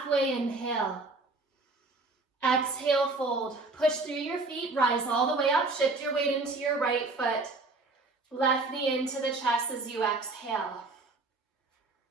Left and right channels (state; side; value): quieter; left; 3.4 dB